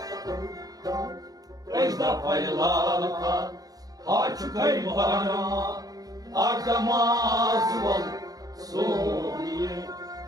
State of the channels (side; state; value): left; late; 0.18 ms